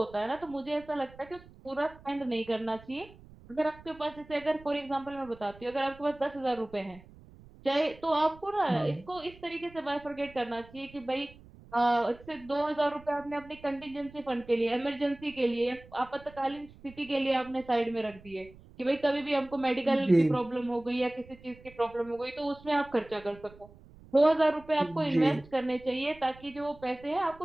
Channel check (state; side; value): noise; right; rumble, 22 dB below the sound